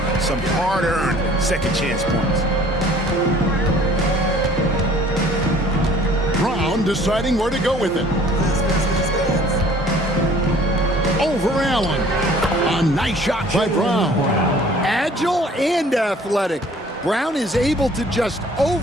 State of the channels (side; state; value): both; normal; correlation 0.53